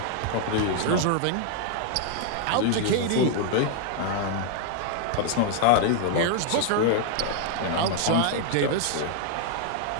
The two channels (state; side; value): different; both; correlation 0.00